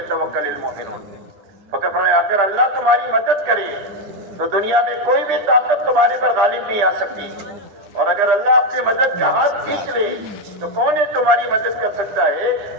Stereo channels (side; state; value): left; late; 10 ms